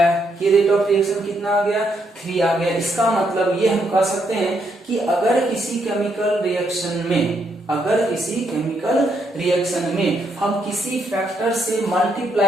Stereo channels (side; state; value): both; normal; correlation 0.76